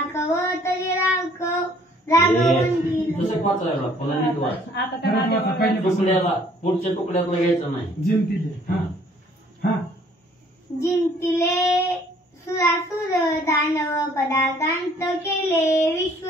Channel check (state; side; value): normal; both; correlation 0.59